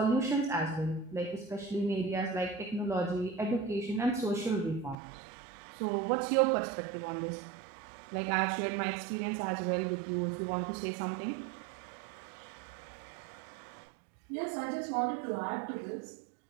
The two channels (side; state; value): left; drops out; at 5.0 s